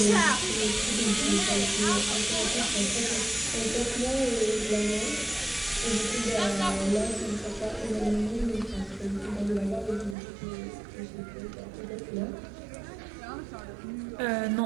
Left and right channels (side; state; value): left; drops out; at 10.2 s